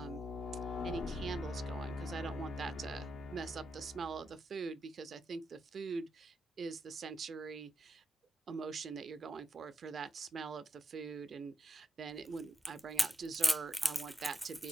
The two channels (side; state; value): both; normal; correlation 0.86